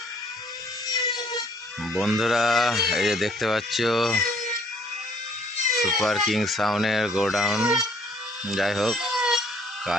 বন্ধুরা, এই যে দেখতে পাচ্ছ সুপার কিং সাউন্ডের গোডাউন। যাই হোক,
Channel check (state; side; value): normal; both; correlation 0.61